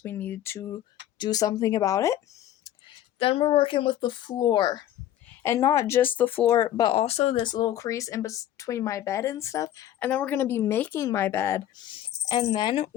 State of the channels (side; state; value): right; quieter; 12.0 dB